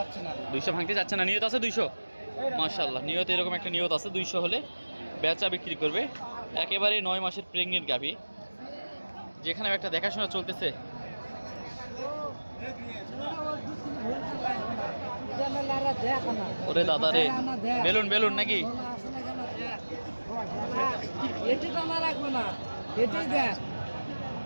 না। 200 ভাঙতে যাচ্ছে না, নিয়ত আছে 200। মাশাআল্লাহ, নিয়ত এরকম একটা নিয়ত আছে, 200 হলে বেচা বিক্রি করবে। একেবারে 9 মাসের প্রেগনেন্ট গাভী, যেখানে একটা দেখাশোনা চলতেছে। ওরে দাদা রে, বেলুন বেলুন নাকি?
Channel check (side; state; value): both; inverted; correlation -1.00